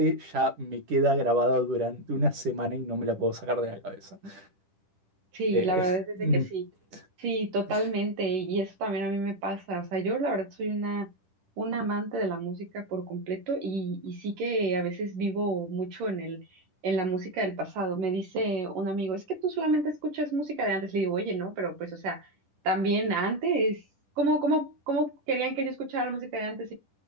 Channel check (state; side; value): late; left; 10 ms